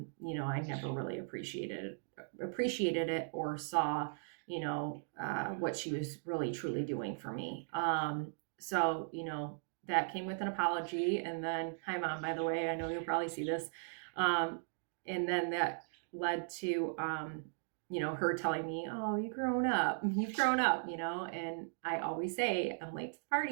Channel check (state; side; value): silent; left; digital silence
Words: never really appreciated it or saw what she was really truly doing for me. So that came with an apology, and then hi mom, by the way, I know you'll probably see this. And then that led to her telling me, oh, you've grown up, and I always say I'm late to the